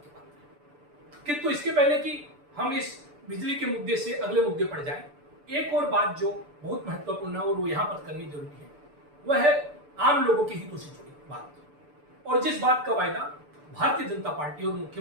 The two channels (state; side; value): late; left; 6.8 ms